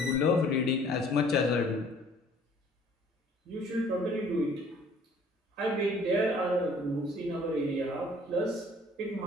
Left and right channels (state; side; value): normal; both; correlation 0.55